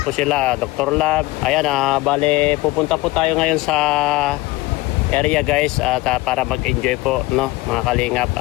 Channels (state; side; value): quieter; right; 20.2 dB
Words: sila, Dr. Lab. Ayan, bale, pupunta po tayo ngayon sa area, guys, at para mag-enjoy po, no, mga kalingap.